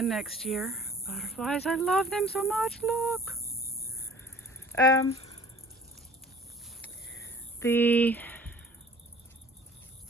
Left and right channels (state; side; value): normal; both; correlation 0.50